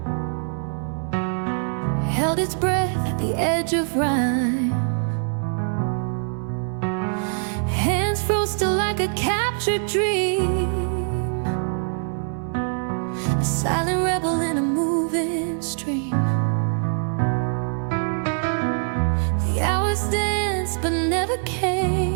held its breath at the edge of rhyme. Hands froze still like a captured dream, a silent rebel in a moving stream. The hours danced but never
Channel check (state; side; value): silent; left; 57 dB below the other